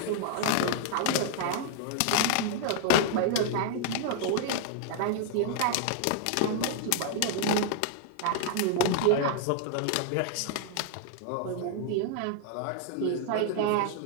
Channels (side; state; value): both; different; correlation 0.00